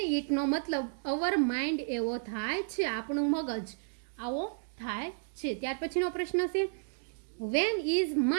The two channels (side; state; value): left; silent; digital silence